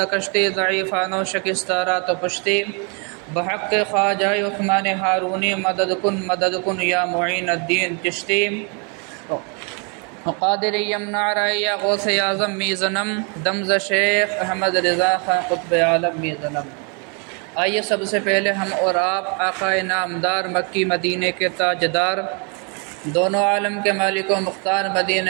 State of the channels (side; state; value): left; quieter; 36.3 dB